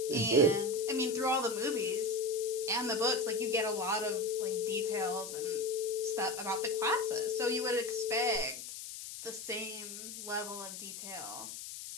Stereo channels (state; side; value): noise; left; hiss, 9 dB below the sound